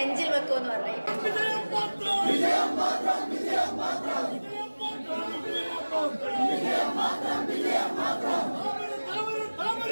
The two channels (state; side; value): inverted; both; correlation -1.00